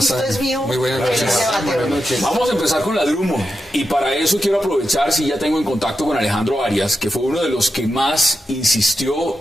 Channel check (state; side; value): normal; both; correlation 0.88